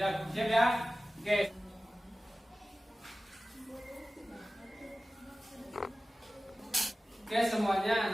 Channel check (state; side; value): normal; both; correlation 0.96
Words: ya? Oke. Oke semuanya